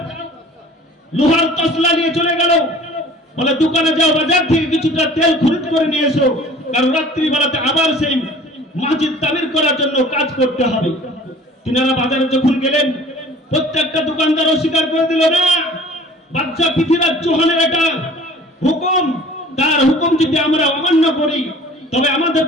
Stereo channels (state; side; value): normal; both; correlation 0.47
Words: লোহার তসলা নিয়ে চলে গেল। বলে, দোকানে যাও, বাজার থেকে কিছুটা তেল খরিদ করে নিয়ে এসো, কারণ রাত্রিবেলাতে আবার সেই মসজিদ তামির করার জন্য কাজ করতে হবে। তিনারা বাজারে যখন গেলেন, প্রত্যেকটা দোকানদার অস্বীকার করে দিল, না, বাদশা পৃথ্বীরাজ চৌহানের এটা হুকুম, তার হুকুম যদি আমরা অমান্য করি তবে